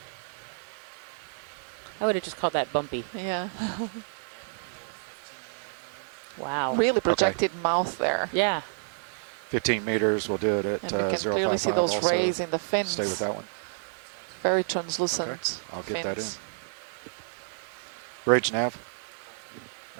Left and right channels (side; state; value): left; silent; digital silence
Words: I would have just called that bumpy. Yeah. Wow. Really projected mouth there. Yeah. 15 meters, we'll do it at And you can clearly see 055 those also. rays in the Stay with fins. that one. Very translucent Okay, I'll get that in. fins. Bridge nav.